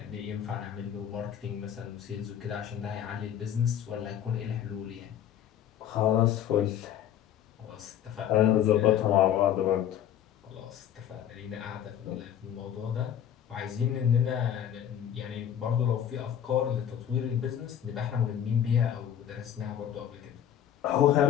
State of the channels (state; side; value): quieter; right; 10.0 dB